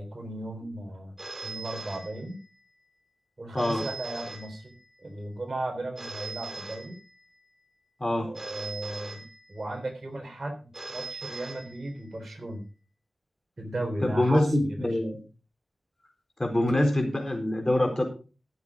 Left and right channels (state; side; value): normal; both; correlation 0.95